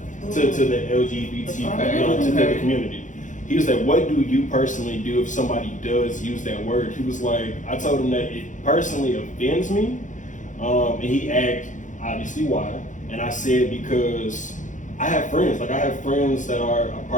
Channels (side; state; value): right; late; 0.36 ms